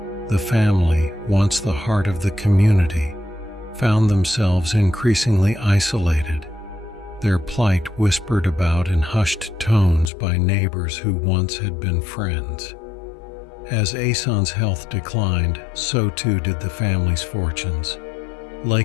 The family, once the heart of the community, found themselves increasingly isolated, their plight whispered about in hushed tones by neighbors who once had been friends. As Aeson's health declined, so too did the family's fortunes.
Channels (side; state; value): right; drops out; at 10.1 s